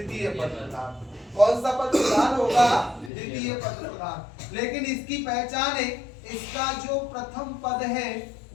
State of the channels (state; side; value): drops out; right; at 3.1 s